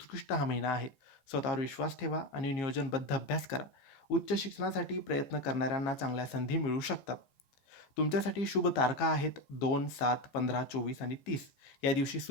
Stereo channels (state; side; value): late; right; 15 ms